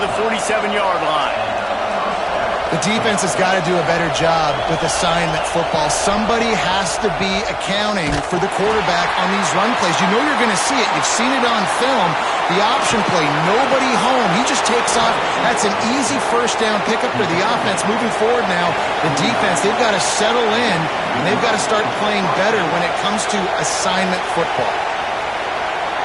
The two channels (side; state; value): both; identical; correlation 1.00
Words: the 47-yard line. The defense has got to do a better job with assignment football. Somebody has to be accounting for the quarterback on these run plays. You know you're going to see it. You've seen it on film. The option play, nobody home. He just takes off. That's an easy first down pickup for the offense. Moving forward now, the defense, they've got to settle in, and they've got to start playing better when it comes to assignment football.